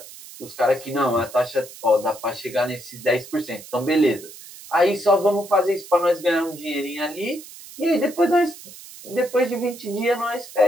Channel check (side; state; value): right; noise; hiss, 17 dB below the sound